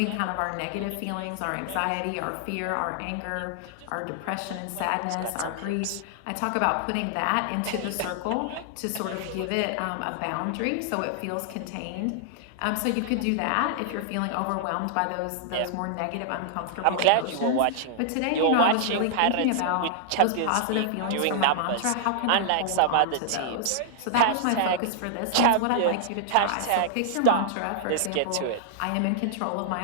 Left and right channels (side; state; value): both; different; correlation -0.01